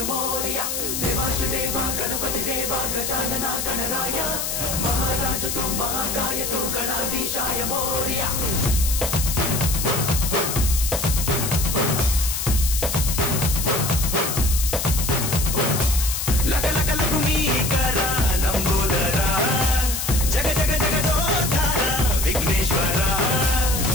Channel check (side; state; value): left; noise; hiss, 2 dB below the sound